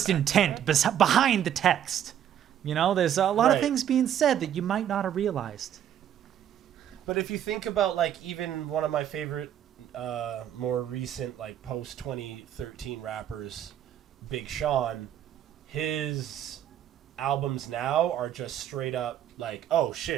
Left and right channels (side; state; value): left; quieter; 10.1 dB